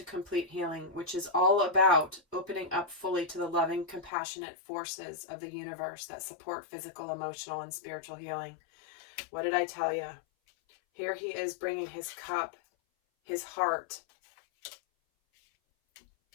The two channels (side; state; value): right; drops out; at 4.1 s